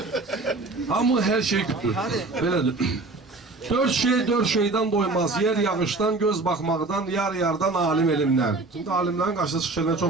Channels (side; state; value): left; quieter; 3.4 dB